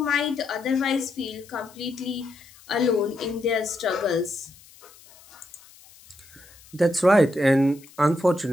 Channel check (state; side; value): noise; left; hiss, 24 dB below the sound